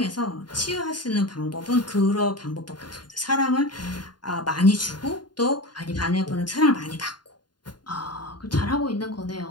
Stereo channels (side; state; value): right; late; 0.71 ms